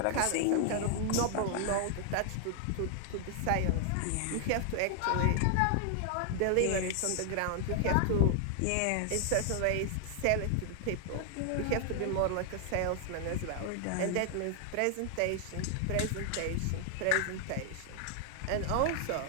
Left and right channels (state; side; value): different; both; correlation 0.00